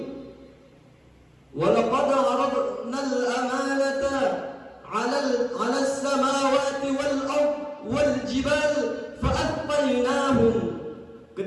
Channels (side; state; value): both; identical; correlation 1.00